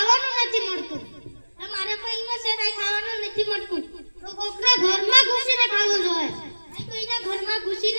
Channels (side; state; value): both; inverted; correlation -1.00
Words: નથી મળતું. તમારે પૈમાં છે કાઈ ખાવાનું નથી મળતું. તો કોકના ઘરમાં ઘૂસીને ખાવું જોઈએ. કોઈના ઘરમાં